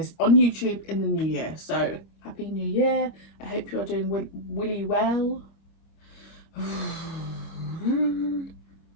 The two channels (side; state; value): right; late; 25 ms